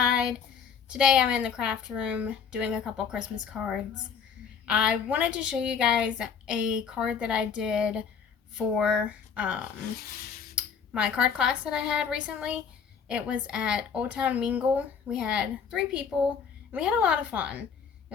Today I'm in the craft room doing a couple Christmas cards. I wanted to show you guys a card that I did for my card class that I had recently. It was at Old Town Mingle. We had 3 people and we had a lot of fun. It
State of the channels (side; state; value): right; quieter; 6.7 dB